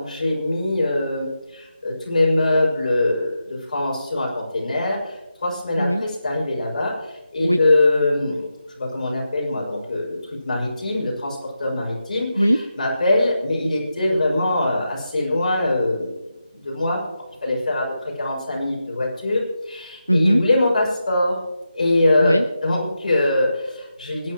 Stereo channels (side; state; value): both; inverted; correlation -0.88